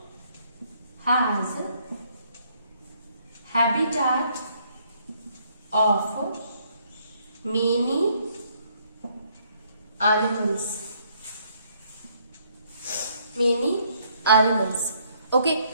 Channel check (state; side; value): inverted; both; correlation -0.67